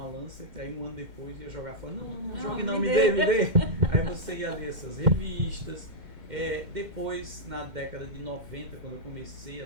Lancet, aí um ano depois ia jogar fora. Não jogue não, me dê. Aí você ia ler essas revistas. Depois, na década de 90, quando eu comecei a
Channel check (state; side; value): late; left; 2.1 ms